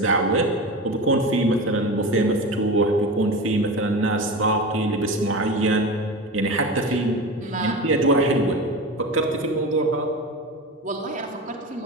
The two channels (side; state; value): both; normal; correlation 0.27